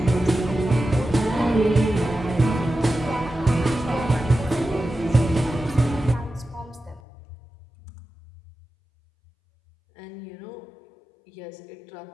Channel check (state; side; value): drops out; right; at 7.0 s